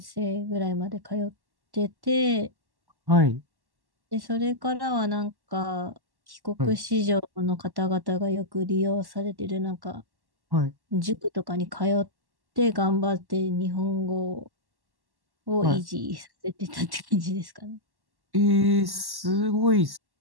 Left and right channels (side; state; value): left; late; 1.1 ms